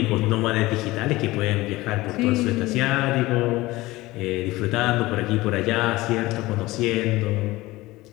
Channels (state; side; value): quieter; right; 19.3 dB